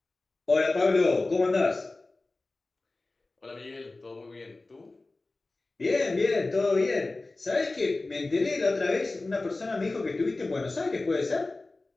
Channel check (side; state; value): right; quieter; 3.2 dB